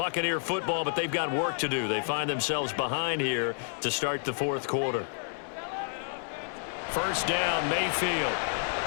football, but they've got work to do. They find themselves behind here to start the fourth quarter. First down, Mayfield.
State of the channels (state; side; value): silent; right; 58 dB below the other